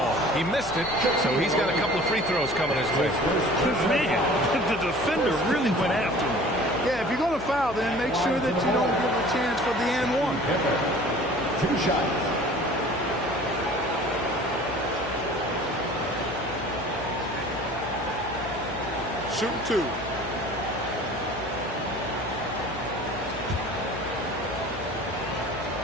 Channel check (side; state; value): left; noise; hum, 14 dB below the sound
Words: He missed it, so he's got a couple of free throws coming his way. Man, the defender really went after him. Yeah, if you're going to foul, then make sure that you don't give a chance for the and one. 2 shots. Shoot 2.